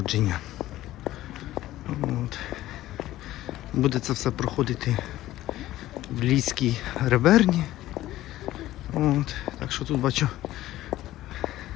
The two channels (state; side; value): quieter; right; 15.1 dB